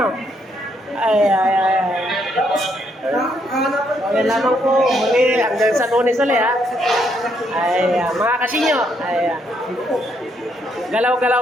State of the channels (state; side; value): normal; both; correlation 0.74